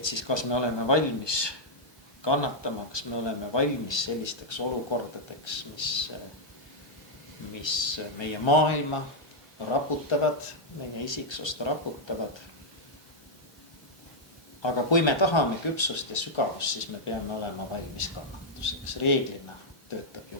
siis kas me oleme valmis kannatama, kas me oleme valmis sellisteks olukordadeks, mis meie maailma raputavad, meie isiksust raputavad. Aga kui me tahame küpsust ja sügavust, siis me peame olema valmis kannatuseks. Reeglina töötab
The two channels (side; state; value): both; normal; correlation -0.05